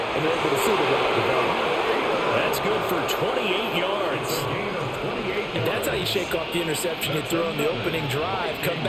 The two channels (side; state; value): both; identical; correlation 1.00